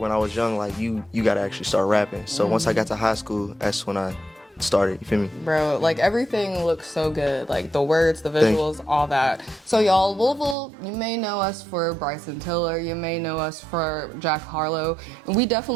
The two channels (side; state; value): left; drops out; at 10.6 s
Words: I was young, like you gotta actually start rapping. So once I got to high school, that's when I started, you feel me? Bro, like everything looks so good. Like the words, the visuals, all that. So y'all, Louisville, you may know us for Bryson Tiller, you may know us for Jack Harlow, and we